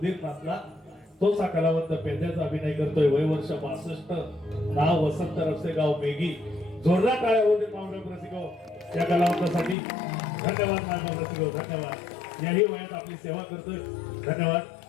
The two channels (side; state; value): right; drops out; at 9.8 s